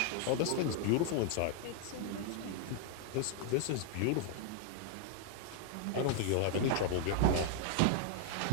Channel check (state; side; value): different; both; correlation 0.00